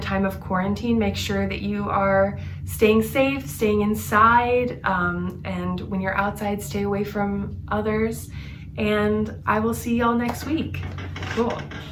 time of quarantine, make sure that you are staying safe, staying inside, and when you're outside, stay away from others. And I will see y'all next week. Cool.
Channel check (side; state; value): both; identical; correlation 1.00